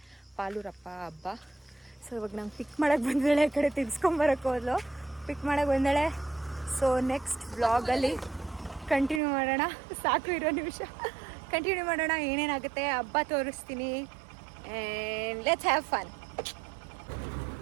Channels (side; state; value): left; drops out; at 9.2 s